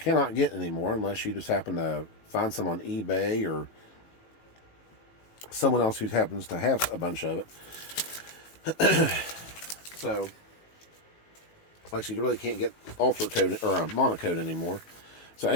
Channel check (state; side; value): late; right; 18 ms